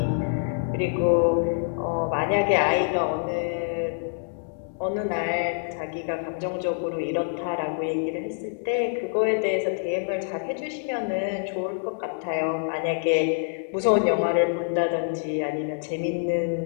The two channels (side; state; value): right; silent; digital silence